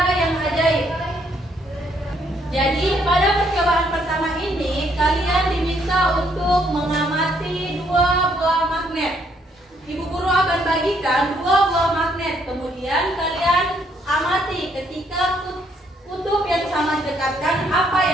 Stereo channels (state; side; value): normal; both; correlation 0.70